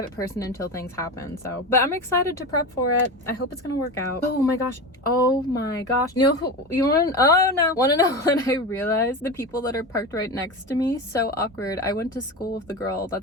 person until things happen. So, but I'm excited to prep for it. I hope it's gonna work out. Oh my gosh. Oh my gosh. You know who, you want to, oh no. Want to know when I realized the people that are parked right next to me? So awkward. I went to school with the girl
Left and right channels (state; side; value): normal; both; correlation 0.24